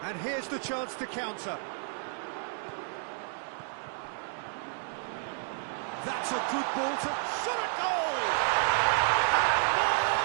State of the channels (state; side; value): silent; left; digital silence